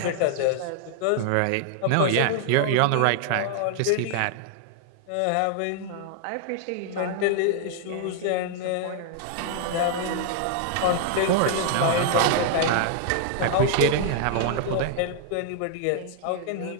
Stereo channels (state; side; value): different; both; correlation 0.00